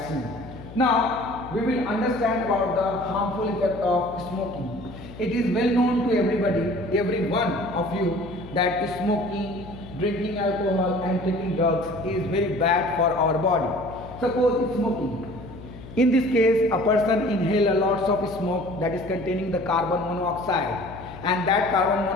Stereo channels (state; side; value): noise; left; hum, 15 dB below the sound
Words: Now we will understand about the harmful effect of smoking. It is well known to everybody, every one of you, that smoking, drinking alcohol and taking drugs is very bad for our body. Suppose smoking. In this case, a person inhales lots of smoke that is containing the carbon monoxide, and that carbon